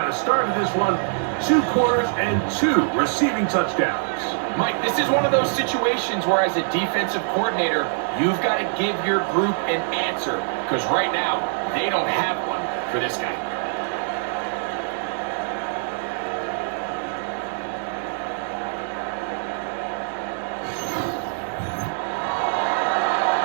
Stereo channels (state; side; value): silent; left; 63 dB below the other